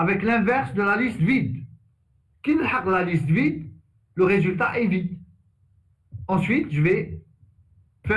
l'inverse de la liste vide. Qui la liste vide, le résultat est vide. Ensuite, je vais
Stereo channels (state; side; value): identical; both; correlation 1.00